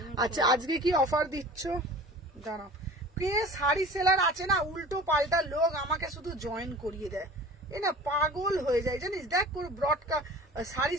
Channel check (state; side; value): normal; both; correlation 0.41